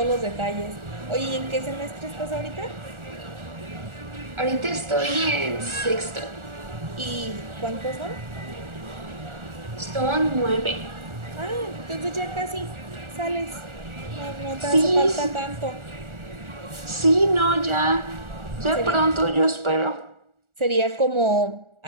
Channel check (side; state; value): left; late; 1.4 ms